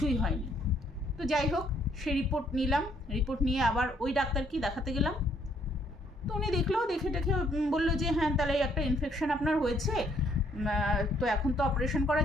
হয়নি। তো যাই হোক, সে রিপোর্ট নিলাম, রিপোর্ট নিয়ে আবার ওই ডাক্তারকে দেখাতে গেলাম। তো উনি দেখলো, দেখে বললো যে হ্যাঁ তাহলে একটা ইনফেকশন আপনার হয়েছে, তো এখন তো অপারেশন করা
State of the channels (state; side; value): normal; both; correlation 0.67